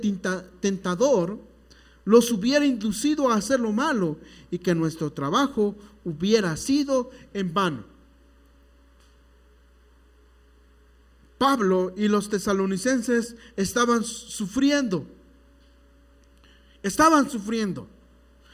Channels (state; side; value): identical; both; correlation 1.00